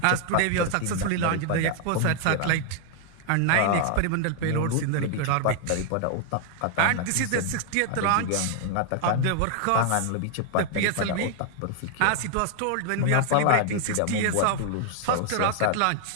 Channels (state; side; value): different; both; correlation 0.00